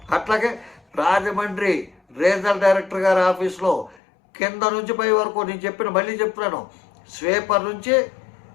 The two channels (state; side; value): drops out; right; at 4.0 s